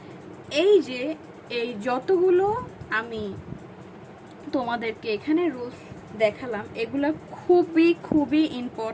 এই যতগুলো আমি তোমাদেরকে এখানে রুলস দেখালাম, এগুলা খুবই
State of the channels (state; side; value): identical; both; correlation 1.00